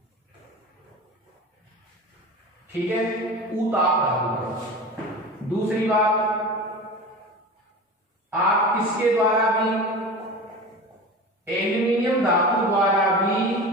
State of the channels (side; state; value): both; normal; correlation 0.32